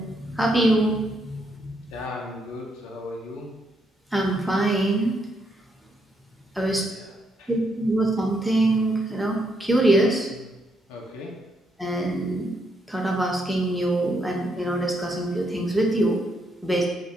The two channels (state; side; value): normal; both; correlation 0.77